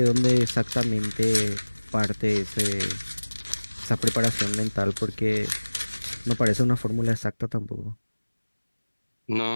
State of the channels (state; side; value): inverted; both; correlation -1.00